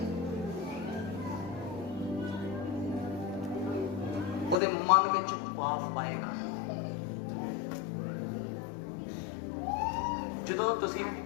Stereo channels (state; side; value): drops out; right; at 4.5 s